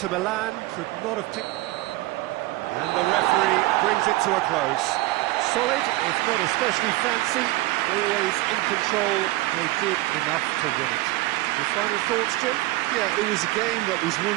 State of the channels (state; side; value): quieter; left; 19.0 dB